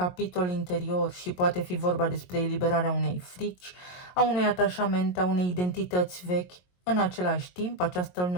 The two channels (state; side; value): late; right; 22 ms